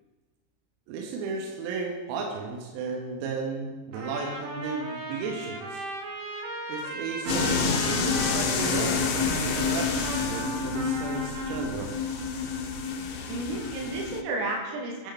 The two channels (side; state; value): left; late; 33 ms